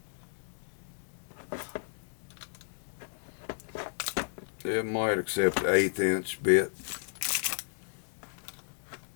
It might accept an 1/8 inch bit.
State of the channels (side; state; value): right; silent; digital silence